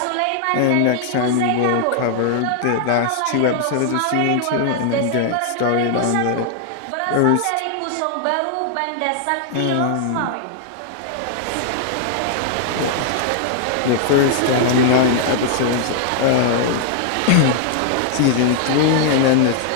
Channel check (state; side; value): different; both; correlation -0.01